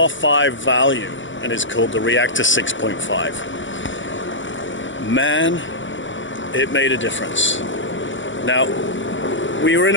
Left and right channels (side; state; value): right; late; 0.55 ms